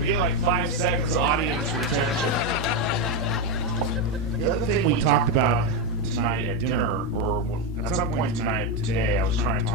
get like 5 seconds audience retention. The other thing we talked about tonight at dinner, or at some point today, I was trying to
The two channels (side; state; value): both; normal; correlation 0.07